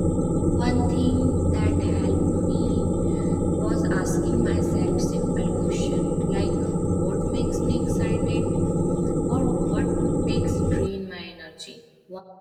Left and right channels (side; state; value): both; identical; correlation 1.00